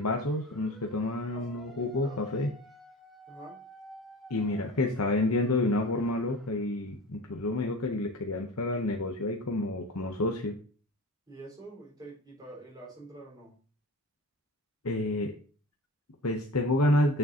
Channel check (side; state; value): both; normal; correlation 0.35